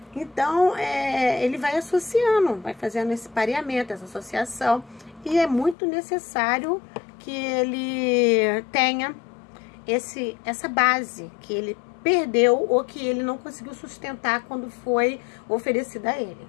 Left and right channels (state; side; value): drops out; right; at 5.8 s